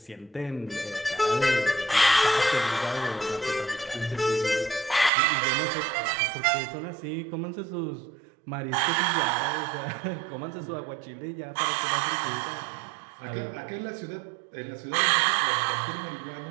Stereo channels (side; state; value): left; drops out; at 5.1 s